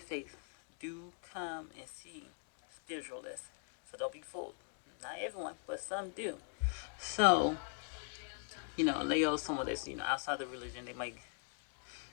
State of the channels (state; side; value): silent; right; 51 dB below the other